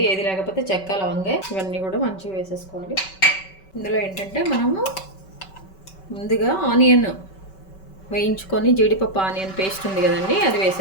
ఏది లేకపోతే చెక్క, లవంగా ఇవన్నీ కూడా మంచిగా వేసేసుకోవాలి. ఇందులో ఏంటంటే మనము ముందుగా ఆనియన్ వేయించుకొని జీడిపప్పు ఆనియన్ పేస్ట్ ఉంది కదండి, అది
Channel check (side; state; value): right; late; 5.2 ms